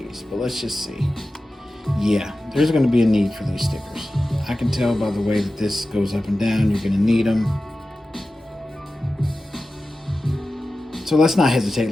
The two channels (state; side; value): normal; both; correlation 0.94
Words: but let's just see. Yeah, there's going to be a need for these stickers. I can tell by the way that this goes up and down, you're going to need them. So let's not